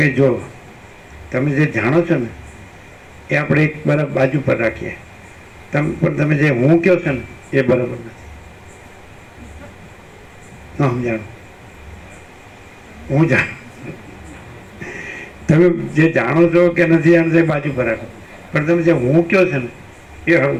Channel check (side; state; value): both; identical; correlation 1.00